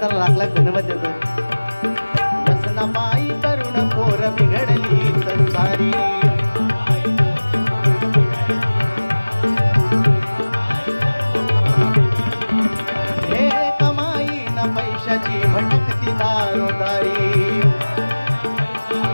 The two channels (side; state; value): both; inverted; correlation -1.00